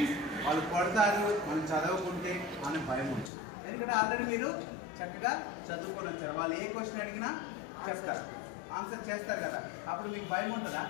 వాళ్ళు కొడతారు, మనం చదవకుంటే అనే భయం ఉంటుంది. ఎందుకంటే ఆల్రెడీ మీరు చక్కగా చదువుకొని వచ్చారు. వాళ్ళు ఏ క్వశ్చన్ అడిగినా చెప్తారు, ఆన్సర్ చేస్తారు కదా, అప్పుడు మీకు భయం ఉంటుందా?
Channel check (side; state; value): right; drops out; at 3.3 s